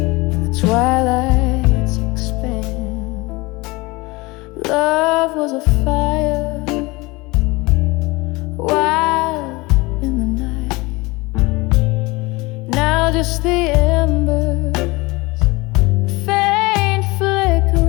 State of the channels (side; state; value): right; quieter; 23.3 dB